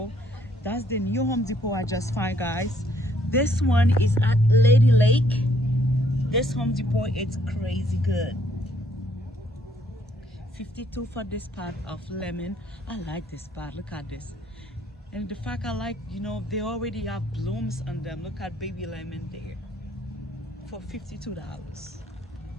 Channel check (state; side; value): normal; both; correlation 0.67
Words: That's the new Home Depot I just found, guys. This one is at Lady Lake. This Home Depot, it's crazy good. 52 for this pot of lemon. I like this pot, look at this. And the fact I like, they already have blooms on them. Look at baby lemon there for $52.